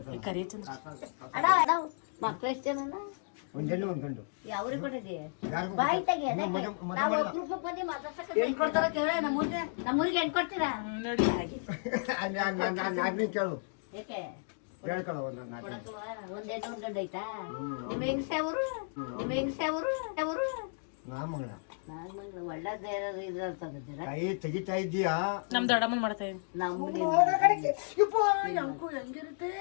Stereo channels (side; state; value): right; silent; digital silence